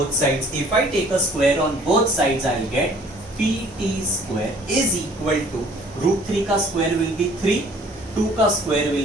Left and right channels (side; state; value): both; normal; correlation 0.55